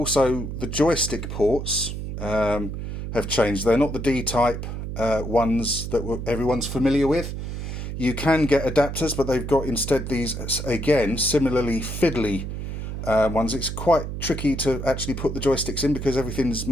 the joystick ports have changed. They're not the D-type ones that everyone's familiar with. You can get adapters, but they've got instead these, again, similarly fiddly ones. It's quite tricky to actually put the joysticks in because everything's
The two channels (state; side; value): noise; right; hum, 6 dB below the sound